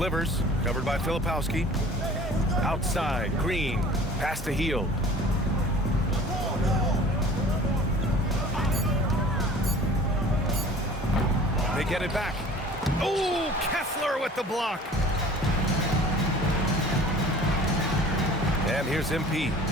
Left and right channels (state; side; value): normal; both; correlation 0.46